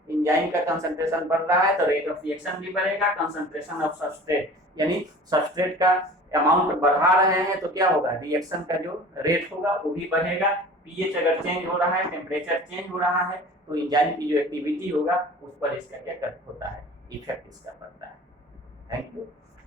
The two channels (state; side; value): normal; both; correlation 0.42